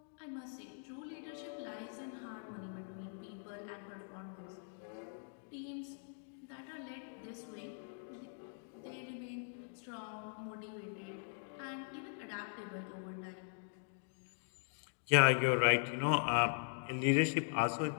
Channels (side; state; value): right; silent; digital silence